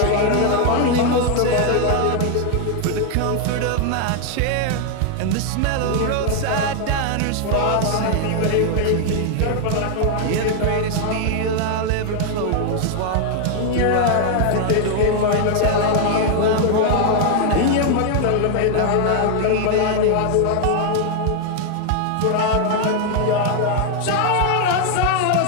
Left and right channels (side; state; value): both; different; correlation 0.00